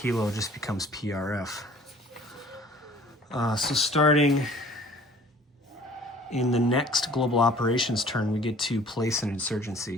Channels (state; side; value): normal; both; correlation 0.51